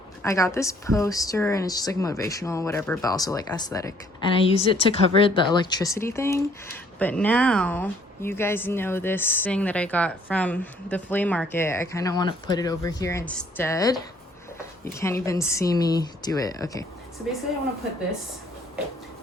I got this poster and it's just like motivational, whatever, but also like aesthetic. And I used it to cover the electricity thing. But now you guys know this thing that I got from the flea market. I kind of want to put it over here instead. You can't even see me do it. Okay. So basically I want to put this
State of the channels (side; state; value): both; normal; correlation 0.62